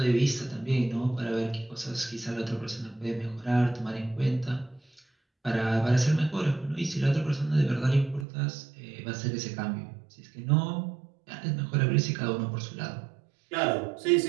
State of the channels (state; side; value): drops out; left; at 8.2 s